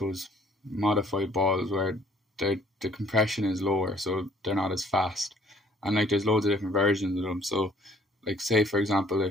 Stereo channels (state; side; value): normal; both; correlation 0.59